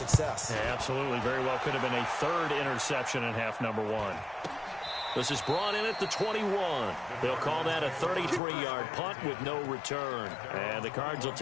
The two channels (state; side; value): drops out; right; at 8.4 s